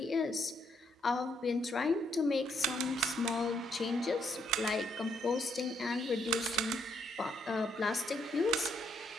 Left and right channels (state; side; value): normal; both; correlation 0.74